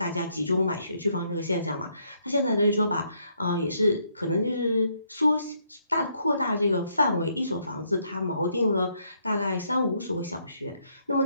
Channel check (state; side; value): inverted; both; correlation -0.72